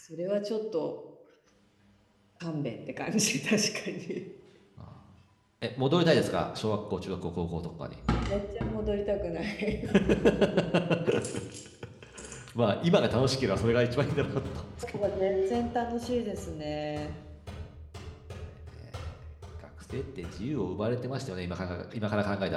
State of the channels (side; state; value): both; identical; correlation 1.00